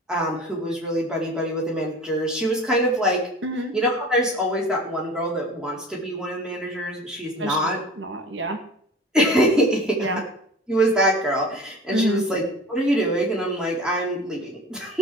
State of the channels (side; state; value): both; normal; correlation 0.39